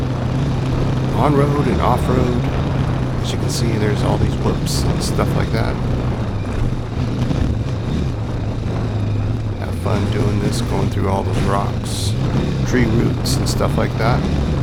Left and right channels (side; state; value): both; identical; correlation 1.00